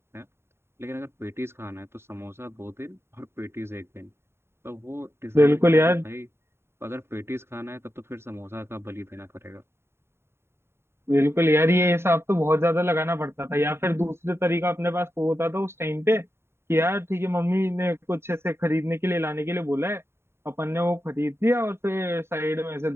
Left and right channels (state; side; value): late; left; 0.12 ms